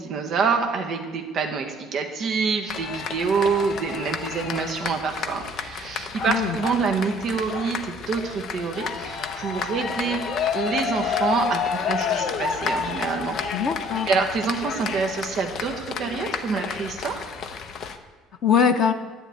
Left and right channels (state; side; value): normal; both; correlation 0.54